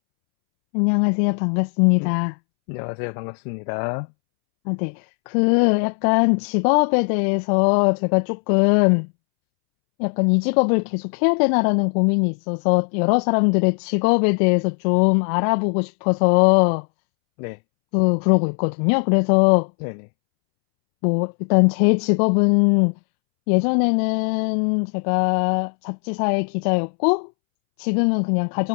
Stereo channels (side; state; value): right; silent; 66 dB below the other